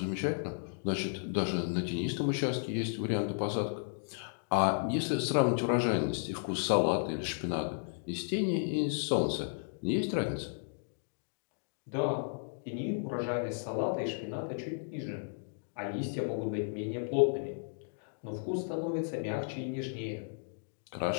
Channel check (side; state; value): right; silent; digital silence